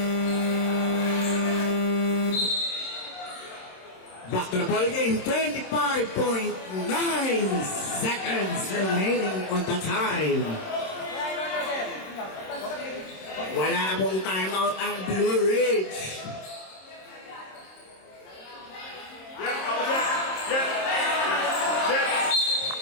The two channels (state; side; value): late; right; 26 ms